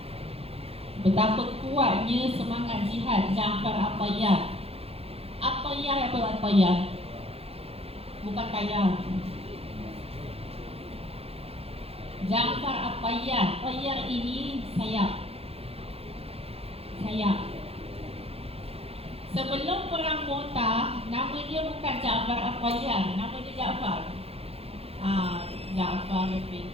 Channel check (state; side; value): late; left; 0.29 ms